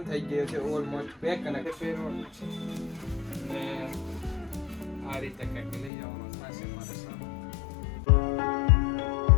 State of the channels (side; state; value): right; drops out; at 5.9 s